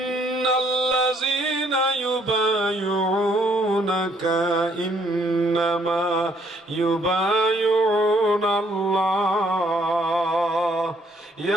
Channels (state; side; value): normal; both; correlation 0.67